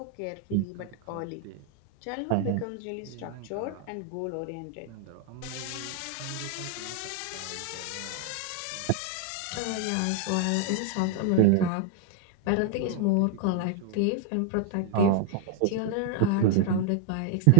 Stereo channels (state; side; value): different; both; correlation 0.00